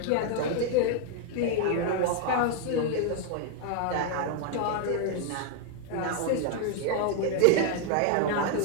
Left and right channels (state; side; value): different; both; correlation 0.00